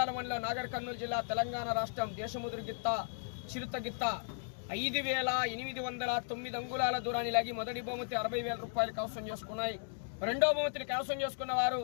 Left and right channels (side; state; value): right; silent; digital silence